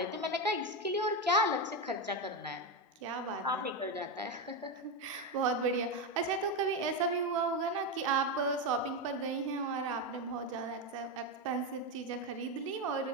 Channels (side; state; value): both; normal; correlation 0.11